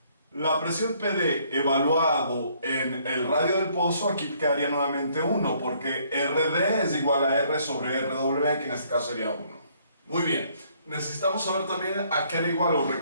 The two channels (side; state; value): both; inverted; correlation -0.65